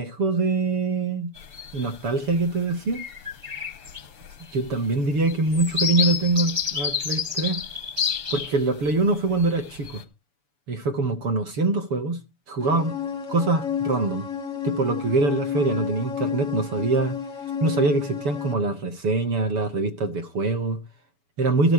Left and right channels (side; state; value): left; late; 7.0 ms